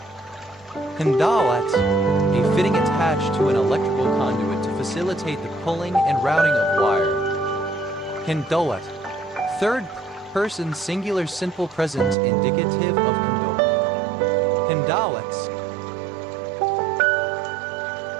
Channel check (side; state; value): left; drops out; at 12.2 s